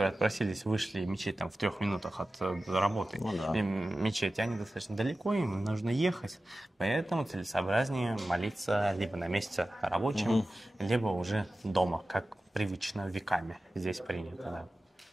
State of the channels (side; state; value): both; normal; correlation 0.95